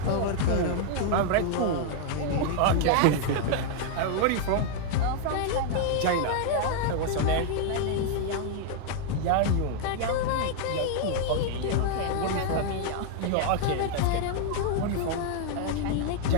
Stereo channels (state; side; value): different; both; correlation 0.00